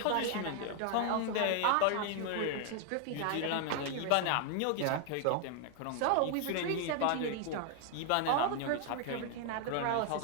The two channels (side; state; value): both; different; correlation 0.00